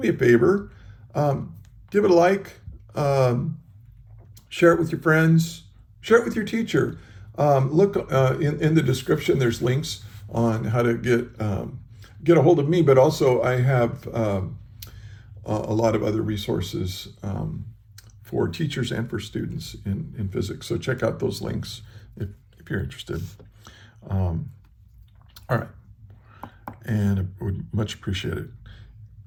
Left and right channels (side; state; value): both; identical; correlation 1.00